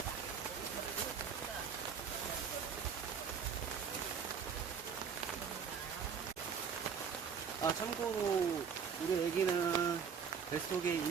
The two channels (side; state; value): left; quieter; 6.7 dB